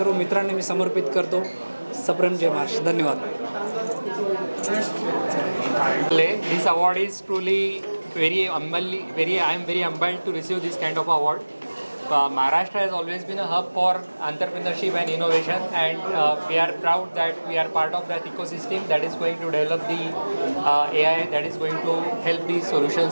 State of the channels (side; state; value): both; inverted; correlation -1.00